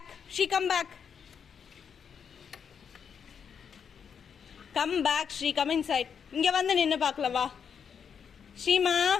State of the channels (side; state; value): right; quieter; 7.1 dB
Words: She, come back. Come back, She. Come inside. இங்க வந்து நின்னு பார்க்கலாம் வா. ஷீமா,